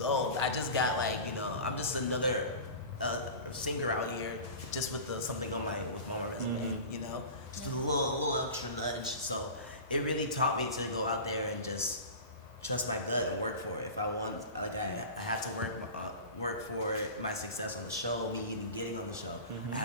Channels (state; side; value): inverted; both; correlation -0.34